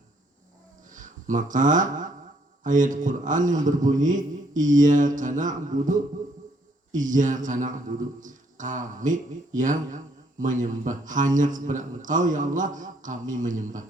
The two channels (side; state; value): both; normal; correlation 0.68